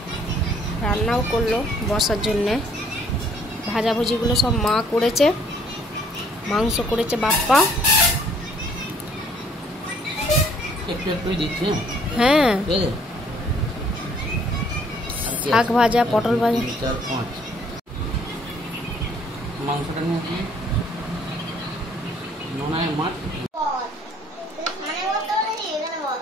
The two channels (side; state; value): both; normal; correlation 0.61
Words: রান্নাও করলো বর্ষার জন্যে, ভাজাভুজিগুলো সব মা করেছে, মাংস করেছে বাপ্পা। একটু একটু দিচ্ছে। হ্যাঁ, শাক ভাজা, পটল ভাজা। 4, 5 মাংসটা নিয়ে নোনায় মাছ।